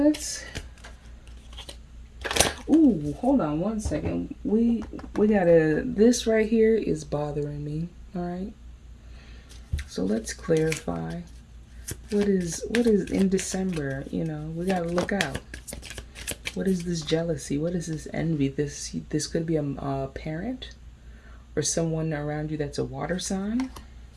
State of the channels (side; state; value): both; identical; correlation 1.00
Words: Ooh, hold on one second. We gotta. This right here is bothering me. All right. So let's clarify. What is in December? We gotta look out. What is this jealousy? What is this envy? This could be a parent or someone around you that's a water sign.